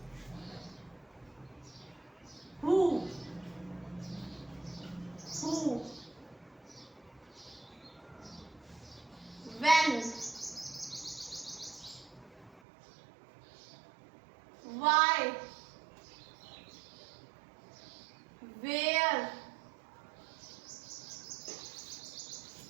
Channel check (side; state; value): left; drops out; at 12.6 s